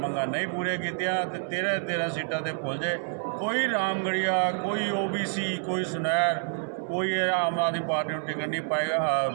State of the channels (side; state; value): left; silent; 59 dB below the other